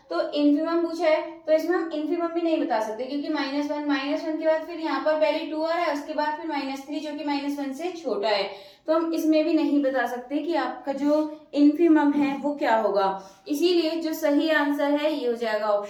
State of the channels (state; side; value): identical; both; correlation 1.00